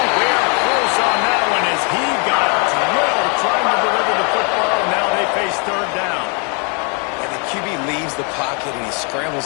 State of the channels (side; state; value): right; quieter; 36.2 dB